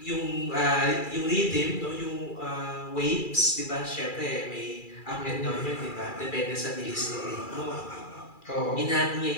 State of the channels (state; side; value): late; right; 2.4 ms